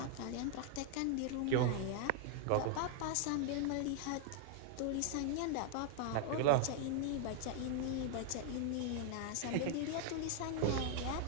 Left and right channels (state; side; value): different; both; correlation -0.01